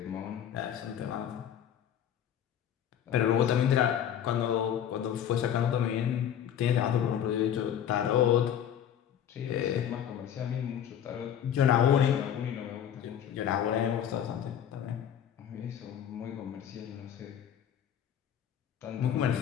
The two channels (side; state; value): right; quieter; 9.6 dB